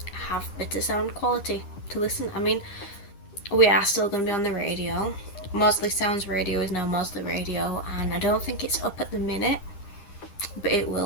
have better sound quality to listen. I mean, we are still going to be on the radio. Mosley Sounds Radio is now Mosley Radio, and I don't think it's up at the minute, but it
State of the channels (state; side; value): late; right; 10 ms